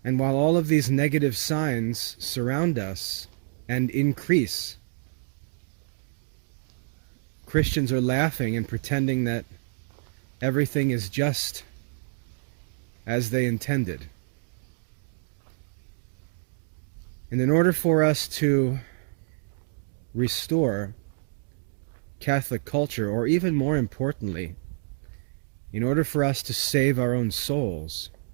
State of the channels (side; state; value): left; silent; digital silence